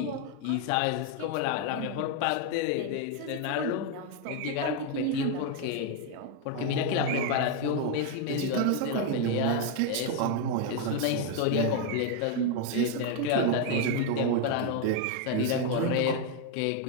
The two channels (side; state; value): both; different; correlation 0.01